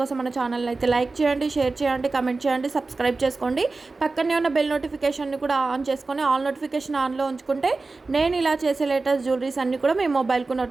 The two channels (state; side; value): quieter; left; 3.7 dB